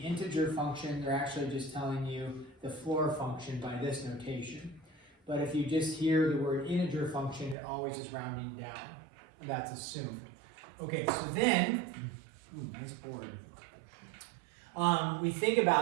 function, they're actually just telling you the floor function by this notation. But if you just hear the word integer function, it always is rounding down. That's assumed. Okay, so then, nice board. We think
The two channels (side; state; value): left; drops out; at 7.6 s